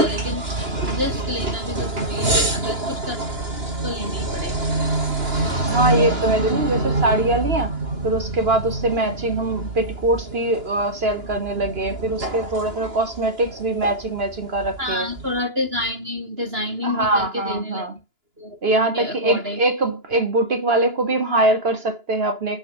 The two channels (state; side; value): late; left; 2.9 ms